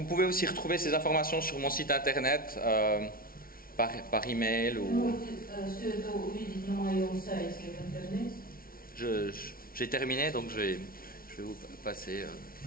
pouvez aussi retrouver ces informations sur mon site internet, par email ou... Можете все это увидеть на моем сайте в интернете. J'ai terminé, donc je vais vous passer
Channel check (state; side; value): late; right; 0.43 ms